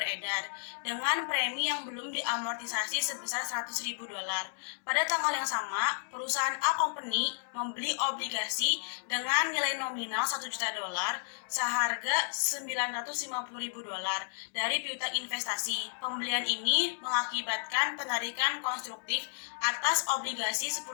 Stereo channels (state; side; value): silent; right; digital silence